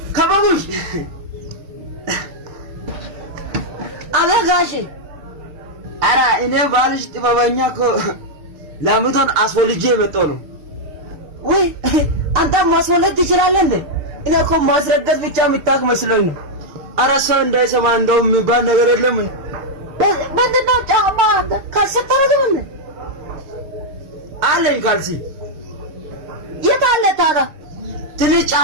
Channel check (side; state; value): left; late; 6.7 ms